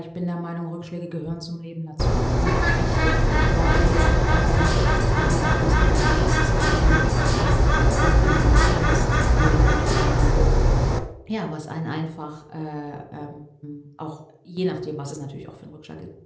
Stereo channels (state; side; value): identical; both; correlation 1.00